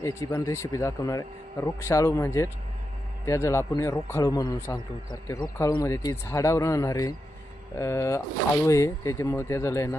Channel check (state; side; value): normal; both; correlation 0.87